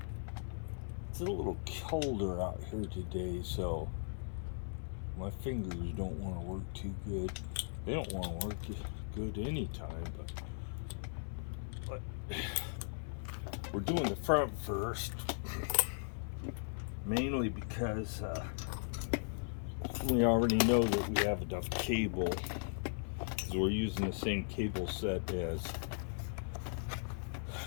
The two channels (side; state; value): right; silent; 52 dB below the other